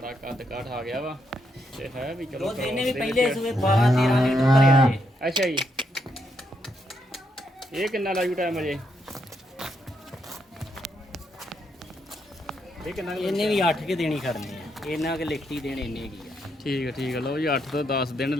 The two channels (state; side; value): normal; both; correlation 0.79